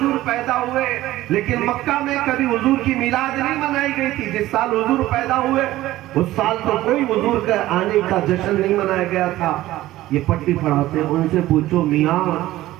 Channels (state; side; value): quieter; left; 15.8 dB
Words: پیدا ہوئے لیکن مکہ میں کبھی حضور کی میلاد نہیں منائی گئی تھی۔ جس سال حضور پیدا ہوئے اس سال تو کوئی حضور کے آنے کا جشن نہیں منایا گیا تھا۔ یہ پٹی پڑھاتے ان سے پوچھو میاں